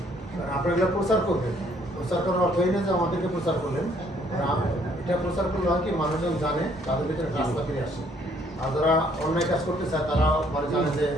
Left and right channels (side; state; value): both; normal; correlation 0.65